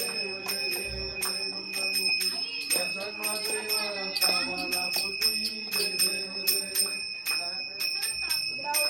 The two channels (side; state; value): left; quieter; 3.6 dB